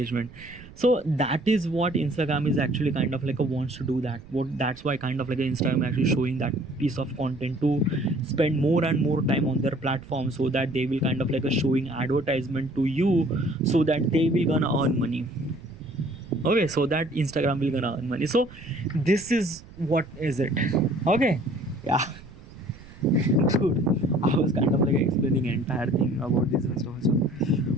So that is what Instagram is actually kind of like a wants to do that. What that's why kind of like Instagram actually showing that piece of content to spend more and more time on their platform, so that they will kind of like a showing advertisement to you, so that they will gonna earn money. Okay, so that Instagram will gonna earn money. So this is what is it. Okay, yeah. Dude, I was kind of like explaining entire thing about this and stuff. So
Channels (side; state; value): right; noise; rumble, 19 dB below the sound